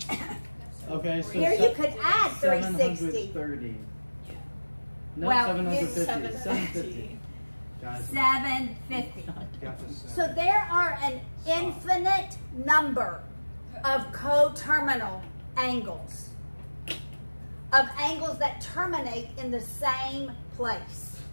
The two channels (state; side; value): inverted; both; correlation -1.00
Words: Okay, so Here you could add 360. 730. No, Well, 750. 750. 750. Guys, 750. Gotcha. So there are an infinite number of coterminal angles, of angles that terminate in the same place.